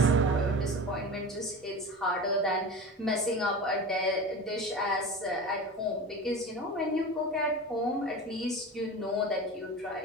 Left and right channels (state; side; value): normal; both; correlation 0.31